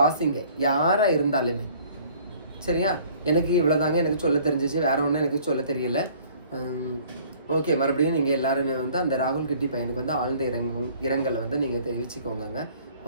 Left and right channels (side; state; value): both; inverted; correlation -0.54